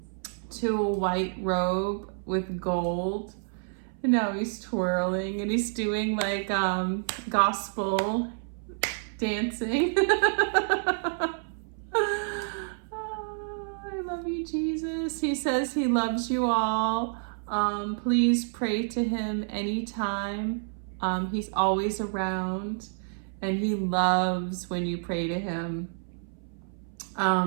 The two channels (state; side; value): silent; left; 59 dB below the other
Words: to a white robe with gold. And now he's twirling and he's doing like gospel dancing. Oh, I love you, Jesus. He says he loves you all. Please pray to him anytime. He's always around and he loves when you pray to him.